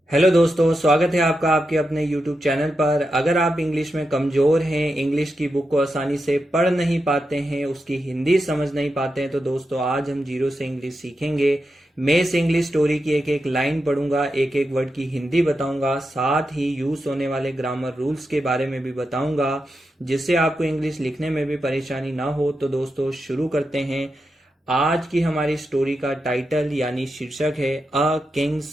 Hello दोस्तों, स्वागत है आपका आपके अपने यूट्यूब चैनल पर। अगर आप इंग्लिश में कमज़ोर हैं, इंग्लिश की बुक को आसानी से पढ़ नहीं पाते हैं, उसकी हिंदी समझ नहीं पाते हैं, तो दोस्तों आज हम जीरो से इंग्लिश सीखेंगे। मैं इस इंग्लिश स्टोरी की एक एक लाइन पढ़ूंगा, एक एक वर्ड की हिंदी बताऊंगा, साथ ही यूज होने वाले ग्रामर रूल्स के बारे में भी बताऊंगा, जिससे आपको इंग्लिश लिखने में भी परेशानी ना हो। तो दोस्तों शुरू करते हैं। आज की हमारी स्टोरी का टाइटल यानी शीर्षक है अ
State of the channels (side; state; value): both; normal; correlation 0.88